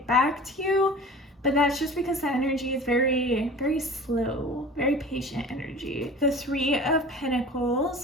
back to you. But that's just because the energy is very, very slow, very patient energy. The Three of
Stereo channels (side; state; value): both; normal; correlation 0.40